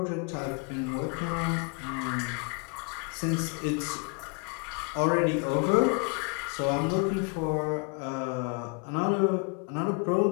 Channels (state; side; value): quieter; right; 34.5 dB